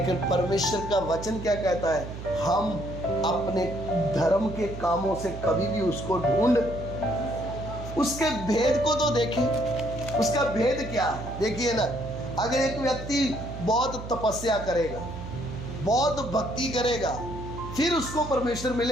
परमेश्वर का वचन क्या कहता है, हम अपने धर्म के कामों से कभी भी उसको ढूंढ, उसके भेद को तो देखें, उसका भेद क्या है। देखिए ना, अगर एक व्यक्ति बहुत तपस्या करेगा, बहुत भक्ति करेगा, फिर उसको परमेश्वर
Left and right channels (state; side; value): noise; right; hum, 10 dB below the sound